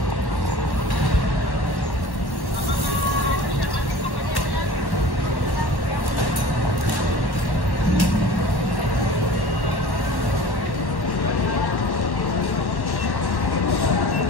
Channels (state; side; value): late; right; 1.1 ms